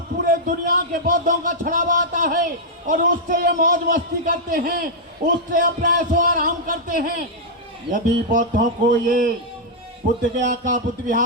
पूरे दुनिया के बौद्धों का छड़ावा आता है और उससे ये मौज मस्ती करते हैं, उससे अपना ऐशो आराम करते हैं। यदि बौद्धों को ये बुद्ध गया का बुद्ध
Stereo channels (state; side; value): normal; both; correlation -0.06